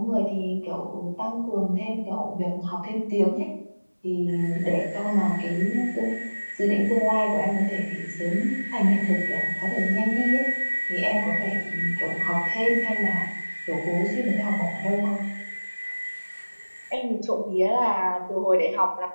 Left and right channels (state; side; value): inverted; both; correlation -1.00